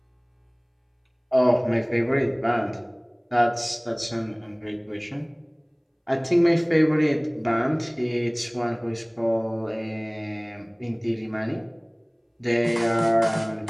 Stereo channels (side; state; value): both; identical; correlation 1.00